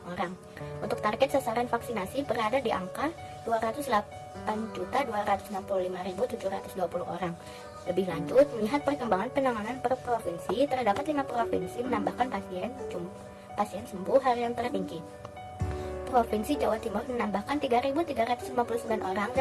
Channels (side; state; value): both; identical; correlation 1.00